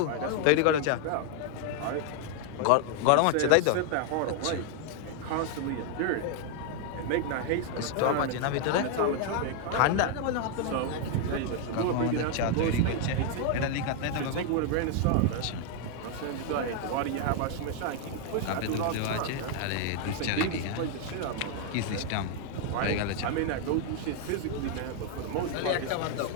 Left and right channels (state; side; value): different; both; correlation 0.00